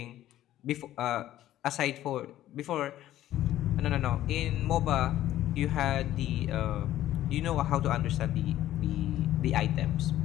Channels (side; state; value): right; quieter; 13.4 dB